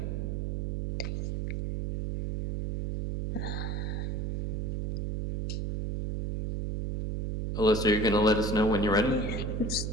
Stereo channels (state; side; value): noise; right; hum, 2 dB below the sound